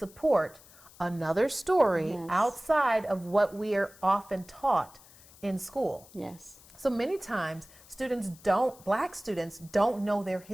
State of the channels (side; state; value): left; noise; hiss, 23 dB below the sound